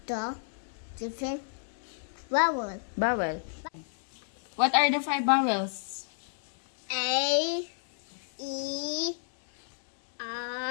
the different vowel. Vowel. What are the 5 vowels? A, E,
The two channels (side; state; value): right; silent; 57 dB below the other